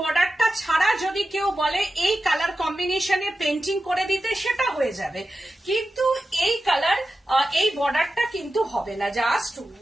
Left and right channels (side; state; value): both; normal; correlation 0.92